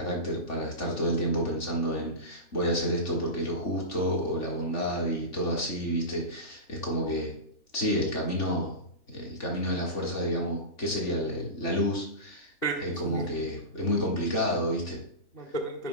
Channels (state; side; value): late; right; 3.5 ms